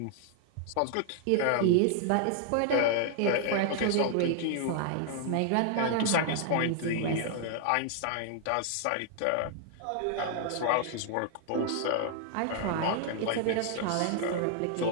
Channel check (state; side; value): different; both; correlation 0.00